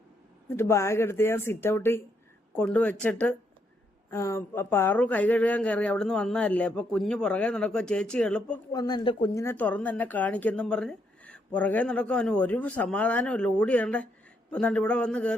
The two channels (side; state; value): both; normal; correlation 0.76